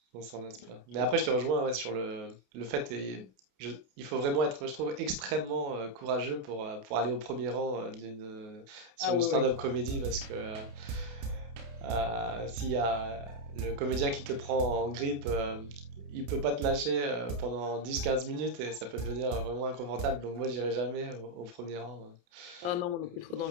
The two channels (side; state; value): left; late; 28 ms